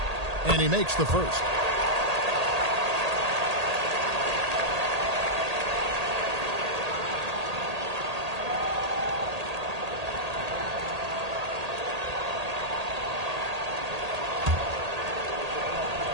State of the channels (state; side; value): late; left; 1.8 ms